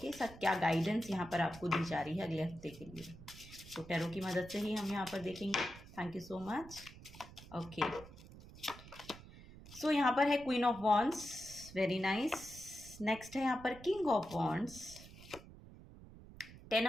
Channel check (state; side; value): noise; right; rumble, 17 dB below the sound